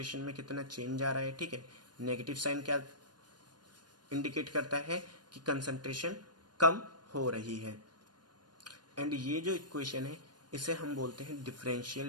में कितना चेंज आ रहा है। ठीक है, नेगेटिव साइन क्या इंडिकेट करता है कि कंसंट्रेशन कम हो रही है। एंड ये जो इक्वेशन है इसे हम बोलते हैं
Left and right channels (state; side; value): late; left; 0.70 ms